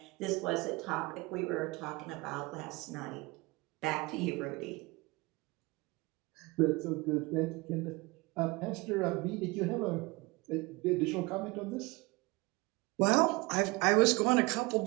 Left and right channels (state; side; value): quieter; left; 24.2 dB